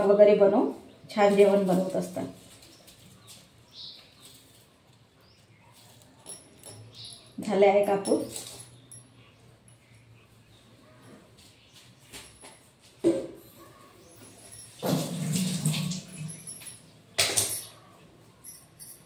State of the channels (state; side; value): identical; both; correlation 1.00